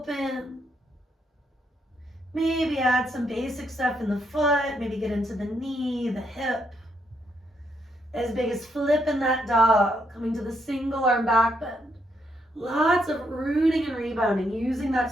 Maybe add some basic stuff in the foot. Maybe get into the knee, the hip. As big as flipping that dog. Coming to the single arm back bend. Lots of rooting and rebounding. Using that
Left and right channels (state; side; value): normal; both; correlation 0.77